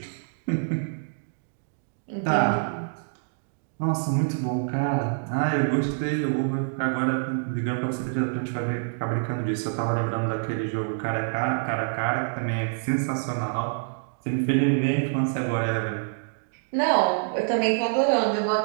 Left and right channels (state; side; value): silent; left; digital silence